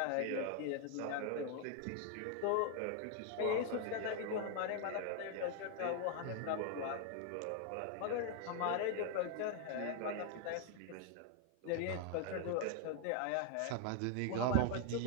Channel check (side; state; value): both; different; correlation 0.00